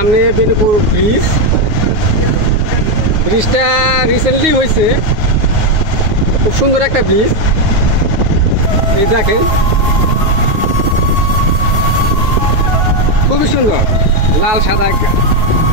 বেনুপুর ব্রিজ, ব্রিজটা রিসেন্টলি হয়েছে, খুব সুন্দর একটা ব্রিজ। এই দেখেন, খুবই সুন্দর, লাল সাদা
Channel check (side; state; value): left; late; 9.3 ms